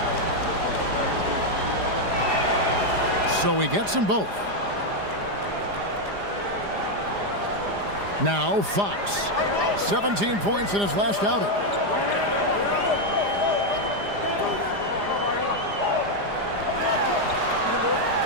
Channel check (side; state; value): left; late; 4.9 ms